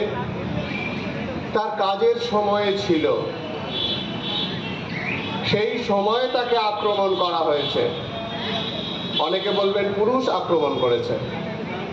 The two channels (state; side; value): identical; both; correlation 1.00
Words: তার কাজের সময়ে ছিল। সেই সময়ে তাকে আক্রমণ করা হয়েছে। অনেকে বলবেন পুরুষ আক্রমণ করেছে,